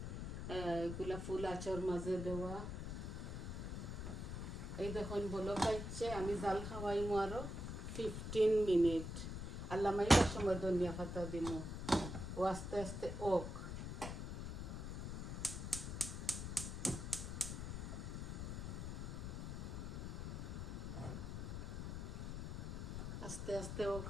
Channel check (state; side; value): noise; left; rumble, 5 dB below the sound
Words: এগুলা ফুল আচার মাঝে দেওয়া। এই দেখুন বলো কাইছে, আমি জাল খাওয়াইমু আরো 15 মিনিট। আল্লাহ মাইবার সময় ধনিয়া পাতা দিমু, ও আস্তে আস্তে ওক। আস্তে আস্তে ওক